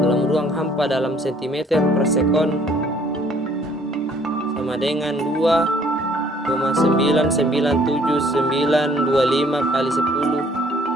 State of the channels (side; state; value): both; normal; correlation 0.60